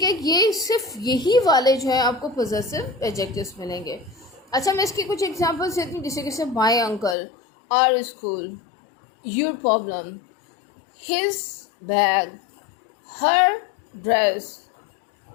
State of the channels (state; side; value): drops out; right; at 7.2 s